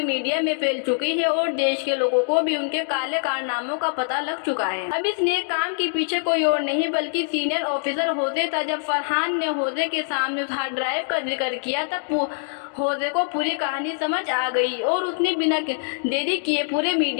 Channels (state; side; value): silent; right; digital silence